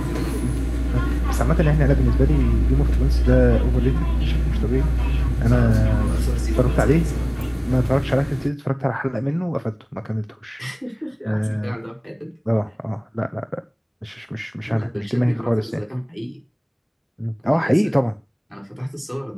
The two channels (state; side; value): identical; both; correlation 1.00